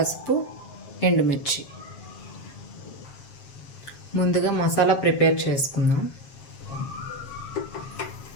ఎండుమిర్చి. ముందుగా మసాలా ప్రిపేర్ చేసుకుందాం.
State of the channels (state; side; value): late; right; 7.4 ms